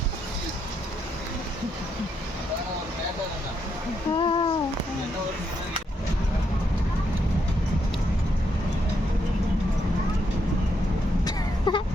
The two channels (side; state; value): both; normal; correlation 0.78